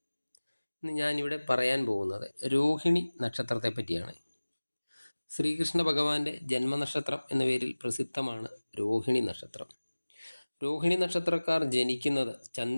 ഇന്ന് ഞാനിവിടെ പറയാൻ പോകുന്നത് രോഹിണി നക്ഷത്രത്തെ പറ്റിയാണ്. ശ്രീകൃഷ്ണ ഭഗവാന്റെ ജന്മനക്ഷത്രം എന്ന പേരിൽ പ്രസിദ്ധമാണ് രോഹിണി നക്ഷത്രം. രോഹിണി നക്ഷത്രക്കാർ ജനിക്കുന്നത്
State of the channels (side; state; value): both; inverted; correlation -1.00